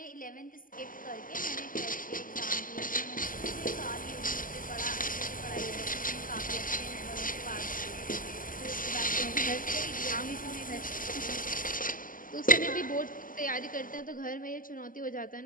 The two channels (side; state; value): right; late; 0.40 ms